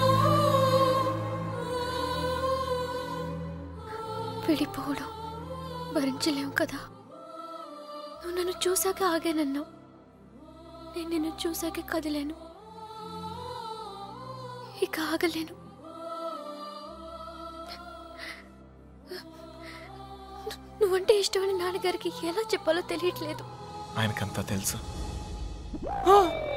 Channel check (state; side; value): identical; both; correlation 1.00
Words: విడిపోవడం భరించలేము కదా. నువ్వు నన్ను చూసాక ఆగానన్నావు, నేను నిన్ను చూసాక కదిలేను. ఇక ఆగలేను. నువ్వంటే ఇష్టమని నాన్నగారికి ఎలా చెప్పాలో తెలియట్లేదు. ఆయనకంతా తెలుసు.